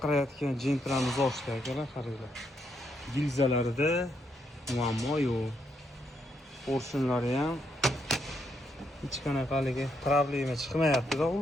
jentramiz ochdi akalar, qaranglar. Gilzalarida muammo yo'q. Porshunlari ham hech qanaqa haligi problema chiqmayapti-da,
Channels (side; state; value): both; normal; correlation 0.77